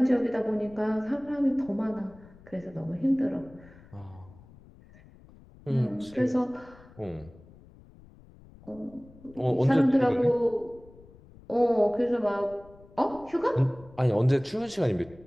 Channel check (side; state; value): left; noise; rumble, 23 dB below the sound